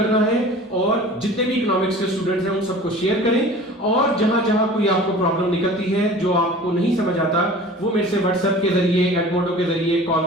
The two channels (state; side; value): normal; both; correlation 0.42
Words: है, और जितने भी इकोनॉमिक्स के स्टूडेंट्स हैं उन सबको शेयर करें। और जहां जहां कोई आपको प्रॉब्लम निकलती है जो आपको नहीं समझ आता, वो मेरे से व्हाट्सएप के जरिए, एडमोडो के जरिए, कॉल